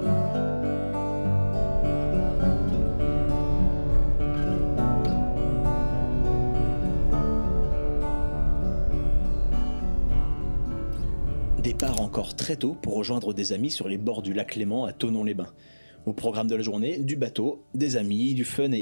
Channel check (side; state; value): both; inverted; correlation -1.00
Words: Départ encore très tôt pour rejoindre des amis sur les bords du lac Léman à Thonon-les-Bains. Au programme de la journée, du bateau, des amis, du fun